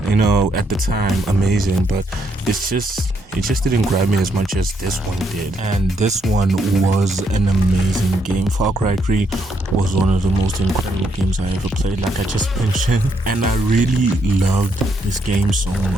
the time amazing, but it just didn't grab me as much as this one did. And this one was an amazing game. Far Cry 3 was one of the most incredible games I ever played, like I just mentioned. And I really loved this game so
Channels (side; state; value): both; normal; correlation 0.75